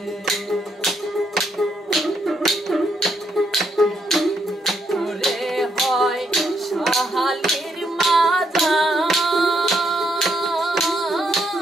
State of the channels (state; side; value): normal; both; correlation 0.75